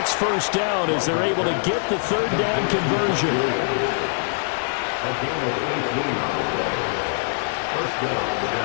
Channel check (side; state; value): right; silent; digital silence